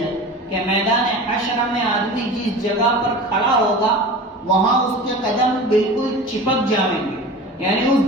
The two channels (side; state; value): both; normal; correlation 0.35